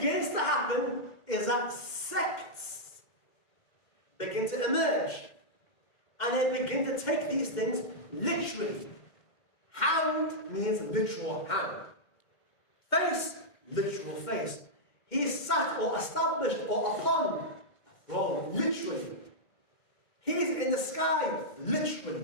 to happen is that sects begin to emerge. And they begin to take these things literally. Hand means literal hand. Face, literal face. He sat or established or upon a throne, literally. He's in the sky,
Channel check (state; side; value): late; right; 2.1 ms